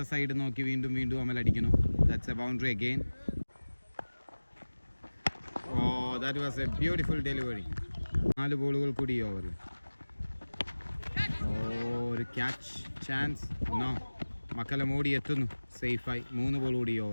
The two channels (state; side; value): inverted; both; correlation -1.00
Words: സൈഡ് നോക്കി വീണ്ടും അമൽ അടിക്കുന്നു. That's a boundary again. That was a beautiful delivery. 4 ബോളുകൾ കൂടി ഈ ഓവറിൽ. ഒരു ക്യാച്ച് ചാൻസ്. നോ. മക്കല്ലം ഓടി എത്തുന്നു സേഫായി. 3 ബോൾ കൂടി ഈ